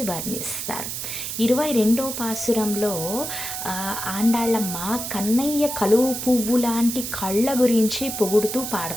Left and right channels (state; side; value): noise; right; hiss, 5 dB below the sound